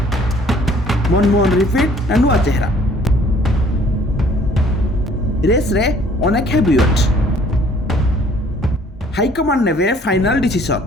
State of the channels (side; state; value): both; normal; correlation 0.57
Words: मनमोहन रिपीट ना नुआ चेहरा रेस रे अनेक हेवीवेट हाईकमांड नेबे फाइनल